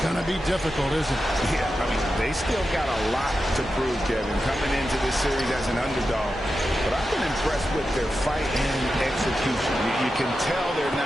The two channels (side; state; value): both; normal; correlation 0.90